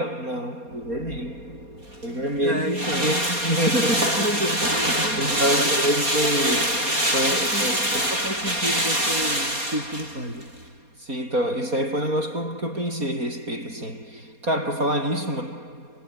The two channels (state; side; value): late; left; 4.2 ms